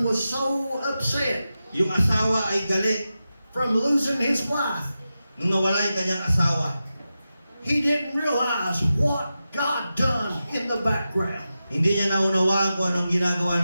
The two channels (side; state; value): both; inverted; correlation -0.92